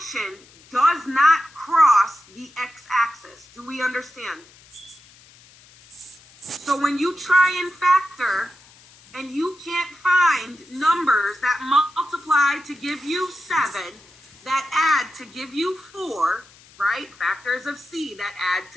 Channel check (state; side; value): noise; left; hiss, 25 dB below the sound